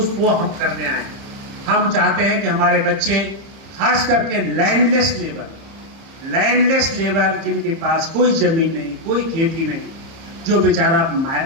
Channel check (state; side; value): late; left; 30 ms